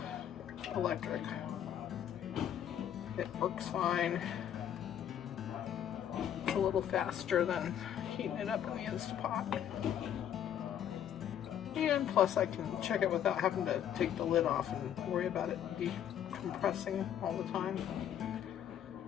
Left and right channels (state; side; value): quieter; right; 9.9 dB